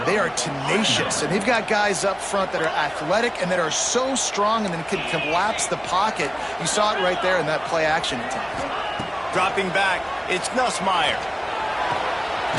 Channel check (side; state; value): both; identical; correlation 1.00